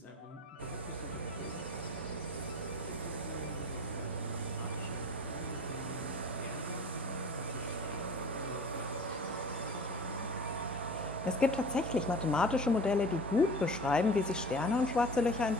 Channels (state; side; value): normal; both; correlation 0.41